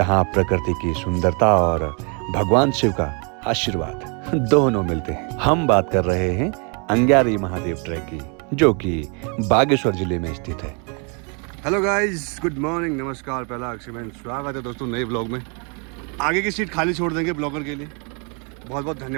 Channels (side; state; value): left; quieter; 35.7 dB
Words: प्रकृति की सुंदरता और भगवान शिव का आशीर्वाद दोनों मिलते हैं। हम बात कर रहे हैं अंग्यारी महादेव ट्रैक की, जो कि बागेश्वर जिले में स्थित है। हेलो गाइस, गुड मॉर्निंग, नमस्कार। पहला अक्षय, स्वागत है दोस्तों नए ब्लॉग में। आगे की सीट खाली छोड़ देंगे ब्लॉगर के लिए। बहुत बहुत